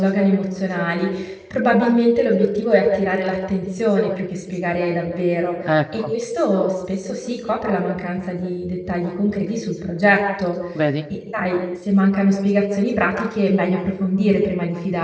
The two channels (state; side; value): identical; both; correlation 1.00